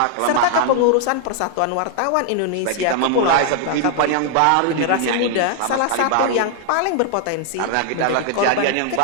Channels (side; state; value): both; different; correlation 0.00